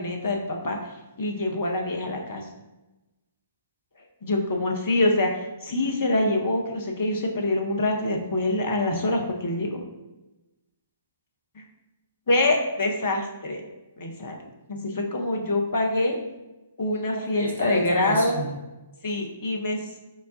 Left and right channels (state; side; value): inverted; both; correlation -0.65